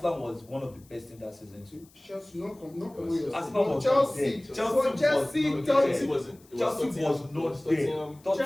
was one of the best in that season too. Chelsea, not come with your Arsenal was Chelsea. there. Chelsea, was Chelsea wasn't. Chelsea was not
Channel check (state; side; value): noise; left; hiss, 28 dB below the sound